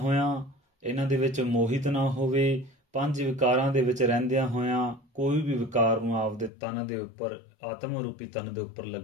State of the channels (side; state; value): right; drops out; at 6.5 s